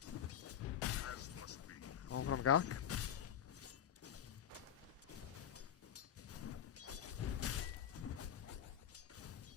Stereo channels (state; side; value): quieter; right; 9.4 dB